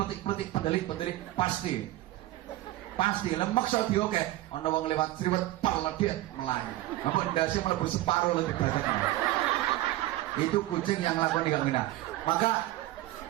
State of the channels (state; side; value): quieter; left; 16.5 dB